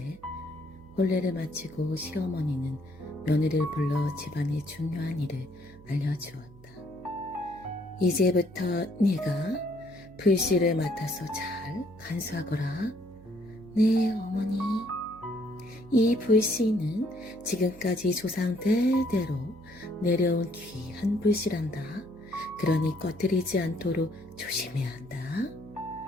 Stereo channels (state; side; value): noise; right; hum, 21 dB below the sound